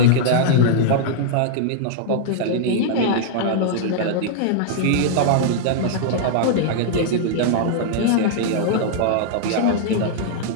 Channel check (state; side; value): different; both; correlation -0.01